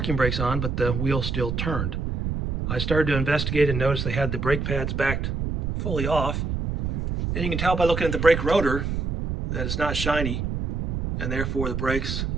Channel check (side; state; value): right; noise; rumble, 2 dB below the sound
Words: brakes on, but the wheel still turned. I started to investigate and noticed they had the brake pads backed fully off. And you can tell by looking at the brake rotor that it's not shiny, and therefore the brakes